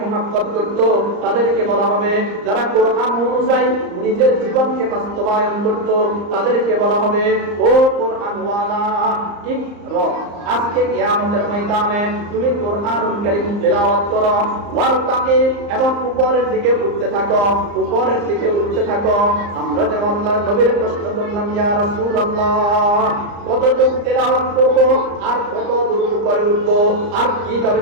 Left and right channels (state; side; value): late; left; 34 ms